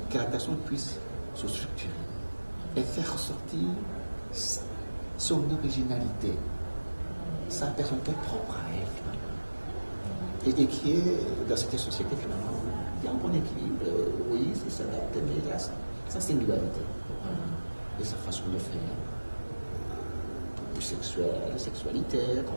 que la personne puisse se structurer et faire ressortir son originalité, sa personnalité propre à elle, et qui est dans cette société, finalement, il y a un bon équilibre, oui, c'est s'adapter, mais il y a sa singularité et sa façon de faire. Du sexuel, la sexualité,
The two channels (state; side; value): inverted; both; correlation -1.00